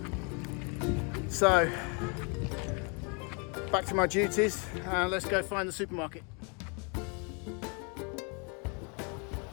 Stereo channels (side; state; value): right; quieter; 34.6 dB